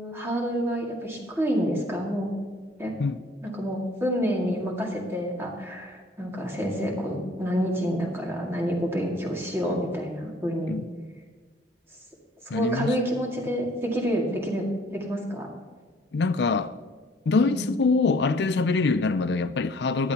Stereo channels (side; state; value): both; normal; correlation 0.57